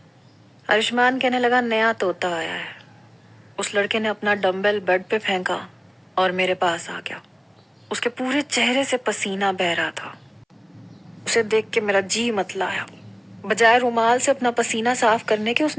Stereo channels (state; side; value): identical; both; correlation 1.00